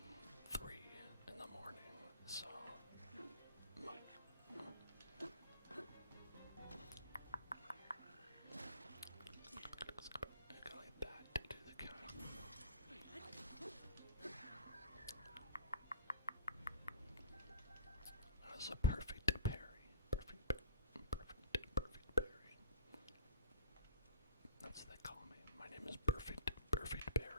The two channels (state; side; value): inverted; both; correlation -0.40